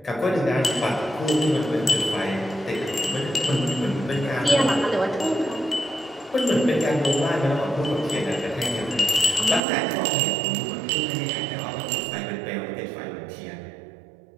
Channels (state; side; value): drops out; left; at 9.6 s